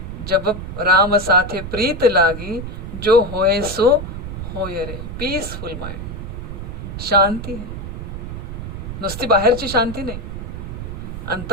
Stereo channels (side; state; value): right; noise; rumble, 7 dB below the sound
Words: जब राम साथे प्रीत लागी, जो होए सो होय रे. पीसफुल माइंड, शांति है. नुसती बाहेरची शांती नाही,